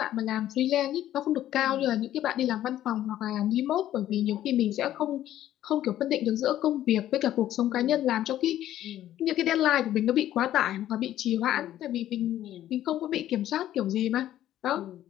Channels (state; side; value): quieter; right; 12.6 dB